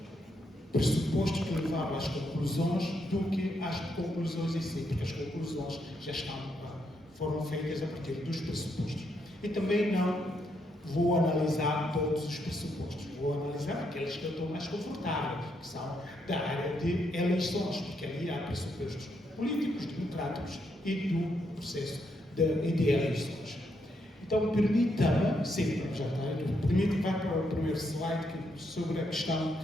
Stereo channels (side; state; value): both; normal; correlation 0.78